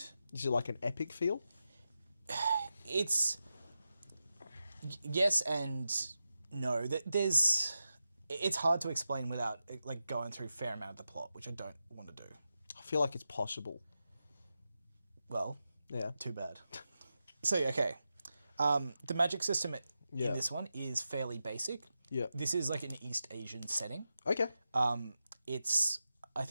Is it like an epic feel? It's yes and no. There's it's hard to explain without like going through a fair amount of the plot, which I don't want to do. I feel like it's possible. Well, Yeah. too bad. So, okay. The magic system in Yeah. this one is fairly basic. Yeah. This is like an East Asian setting. Okay. I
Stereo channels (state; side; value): inverted; both; correlation -0.91